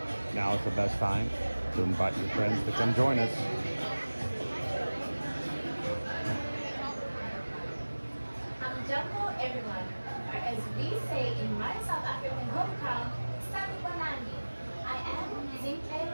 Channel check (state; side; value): inverted; both; correlation -1.00